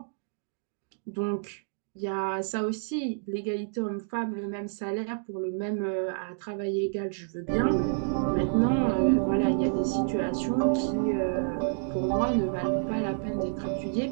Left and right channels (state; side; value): silent; left; digital silence